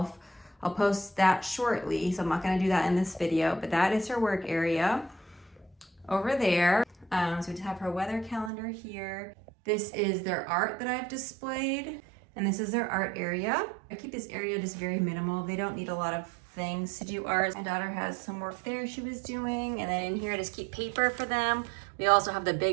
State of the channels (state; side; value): drops out; left; at 8.5 s